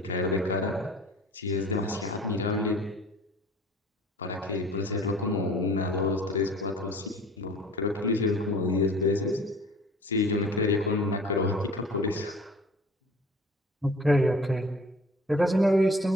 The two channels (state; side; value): normal; both; correlation 0.46